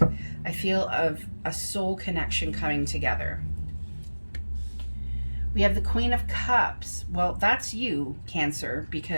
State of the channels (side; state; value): both; inverted; correlation -1.00